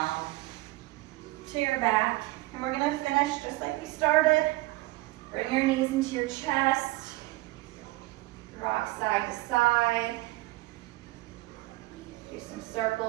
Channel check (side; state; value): left; quieter; 20.3 dB